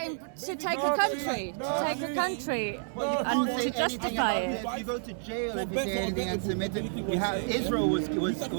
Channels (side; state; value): left; silent; digital silence